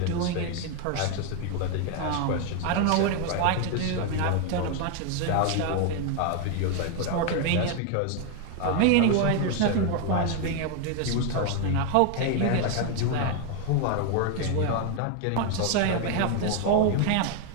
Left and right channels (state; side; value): different; both; correlation 0.01